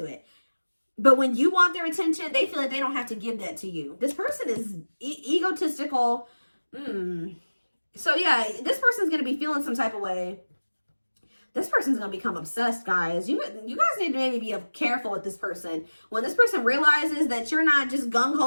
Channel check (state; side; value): inverted; both; correlation -1.00